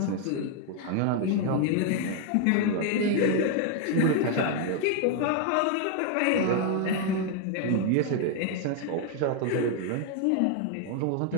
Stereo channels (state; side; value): different; both; correlation 0.00